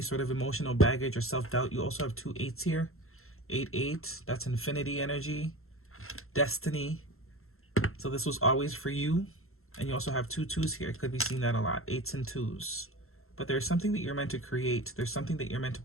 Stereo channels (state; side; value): late; right; 0.62 ms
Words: sort of emotional baggage or self-doubt. You also have two eights here. 8-8, that's infinity energy, destiny. So this was always for you. And you also have two twos here. Could be seeing that a lot, 8s and 2s. But there's something that you're meant to create. There's something that you're meant to